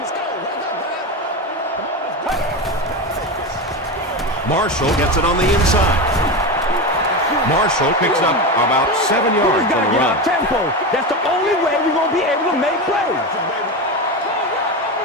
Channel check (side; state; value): both; normal; correlation 0.19